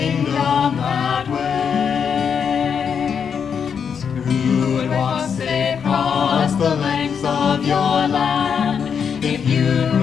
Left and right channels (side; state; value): right; quieter; 7.0 dB